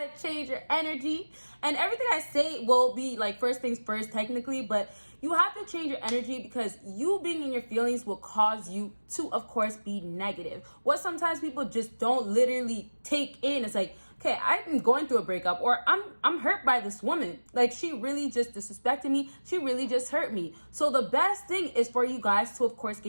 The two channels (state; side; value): inverted; both; correlation -1.00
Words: change your energy. And everything I say will be like first things first technically, but you have to change your energy, because you being in your feelings will cause you to, of course, be negative. What sometimes people just don't literally take in, it's like, okay, I'm going through a breakup, or I'm hurt by this woman. Like, she really just disrespected me. She really just hurt me. So the best thing is for you guys to, of course,